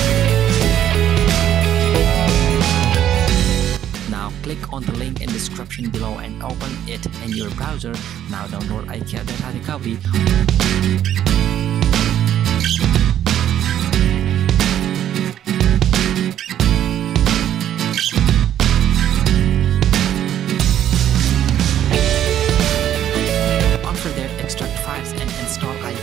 Now click on the link in description below and open it in your browser. Now download iCare data recovery. Install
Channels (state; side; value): quieter; left; 10.9 dB